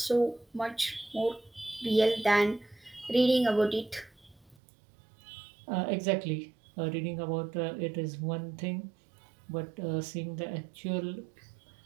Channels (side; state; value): left; drops out; at 4.5 s